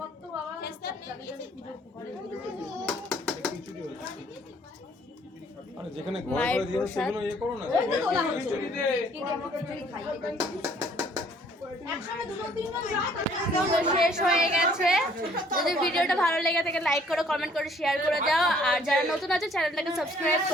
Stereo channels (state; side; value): normal; both; correlation 0.60